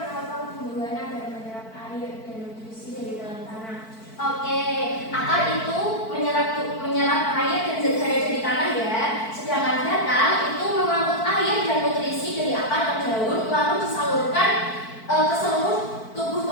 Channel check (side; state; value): right; late; 4.5 ms